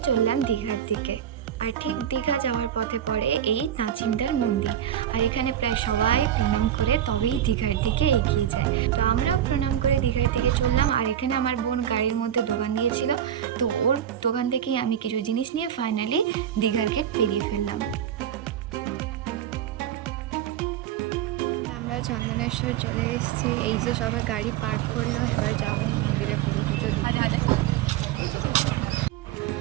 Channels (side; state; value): left; quieter; 10.4 dB